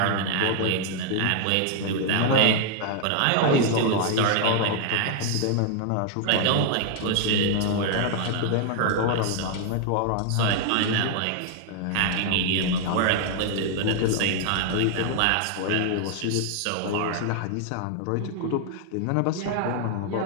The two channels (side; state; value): both; different; correlation 0.00